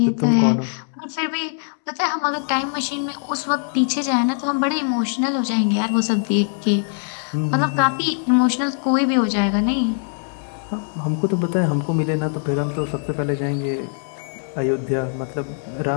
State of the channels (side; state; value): right; silent; 58 dB below the other